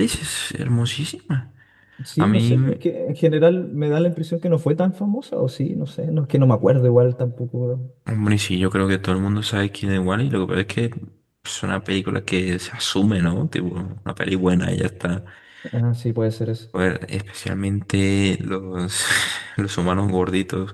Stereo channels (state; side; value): identical; both; correlation 1.00